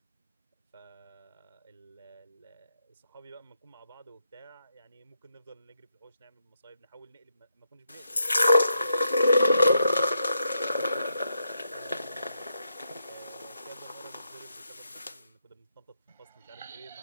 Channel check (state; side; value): inverted; both; correlation -0.82